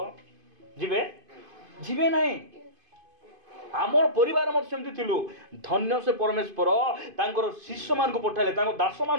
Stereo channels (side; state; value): left; late; 2.5 ms